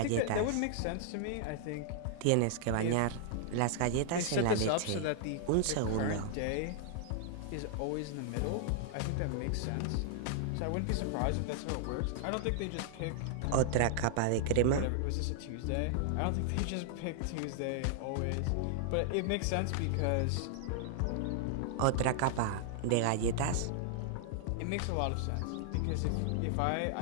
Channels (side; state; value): both; different; correlation -0.01